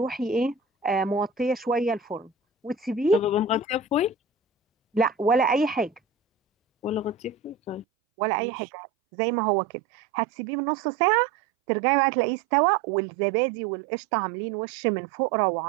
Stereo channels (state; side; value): drops out; left; at 7.9 s